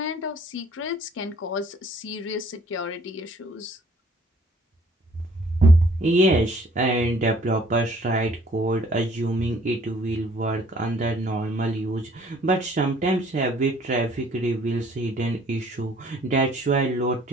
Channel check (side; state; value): both; normal; correlation 0.58